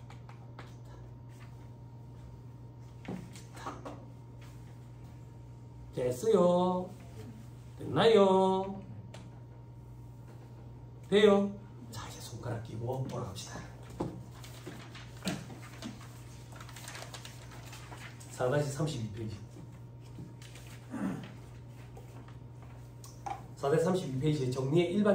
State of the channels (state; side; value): identical; both; correlation 1.00